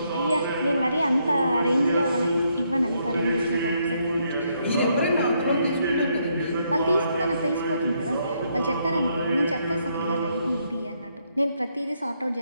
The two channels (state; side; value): inverted; both; correlation -0.75